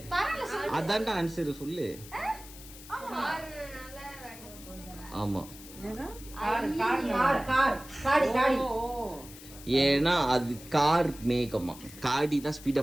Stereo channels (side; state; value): left; noise; hiss, 17 dB below the sound